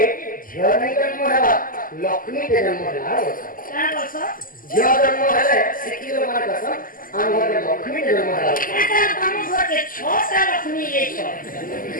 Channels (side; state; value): right; late; 0.41 ms